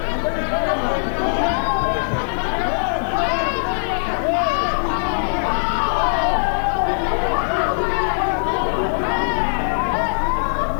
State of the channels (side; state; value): right; silent; digital silence